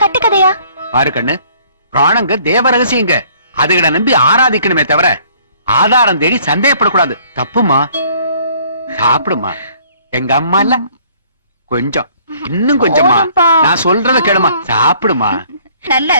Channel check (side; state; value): both; inverted; correlation -0.59